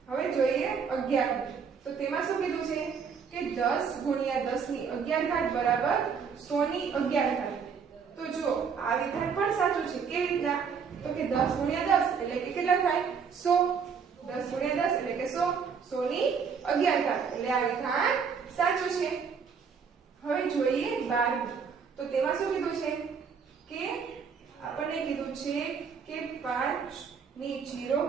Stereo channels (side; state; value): left; quieter; 6.3 dB